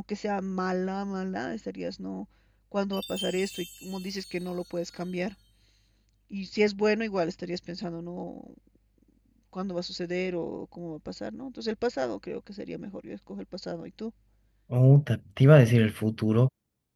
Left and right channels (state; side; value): identical; both; correlation 1.00